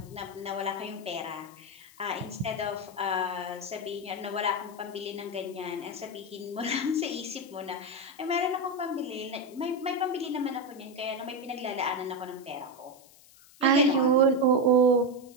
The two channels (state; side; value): noise; left; hiss, 24 dB below the sound